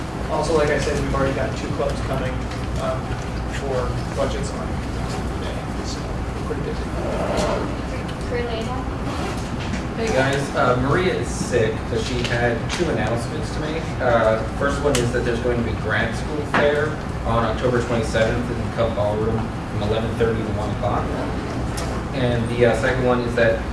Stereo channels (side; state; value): both; identical; correlation 1.00